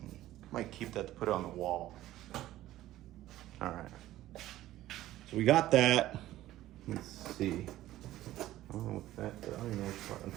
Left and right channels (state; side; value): quieter; left; 14.7 dB